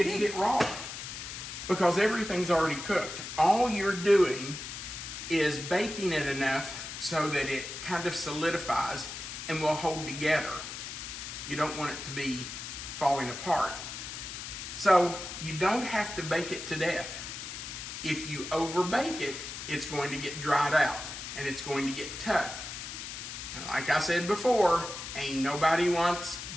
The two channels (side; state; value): left; noise; hiss, 8 dB below the sound